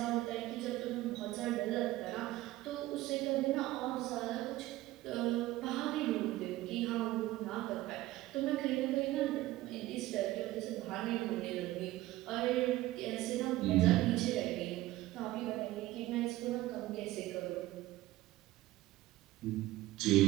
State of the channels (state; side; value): quieter; left; 16.9 dB